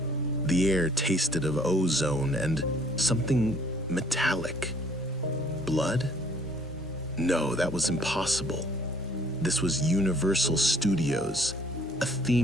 The air tasted of ozone and something metallic. Blood? No, that was impossible. This was Universal Studios, a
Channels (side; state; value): both; normal; correlation 0.59